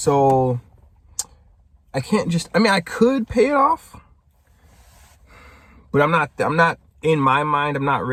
I can't just, I could pay it off. But I'm not in my mind, I'm not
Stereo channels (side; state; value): both; identical; correlation 1.00